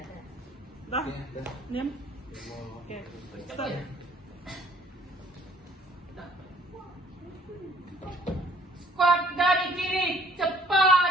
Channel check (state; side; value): normal; both; correlation 0.58